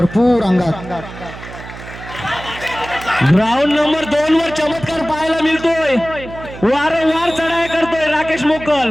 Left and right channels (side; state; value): right; noise; hum, 14 dB below the sound